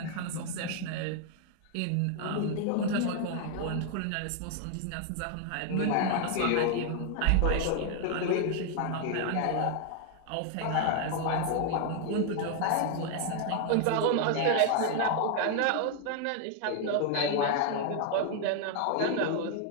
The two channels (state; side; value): different; both; correlation 0.00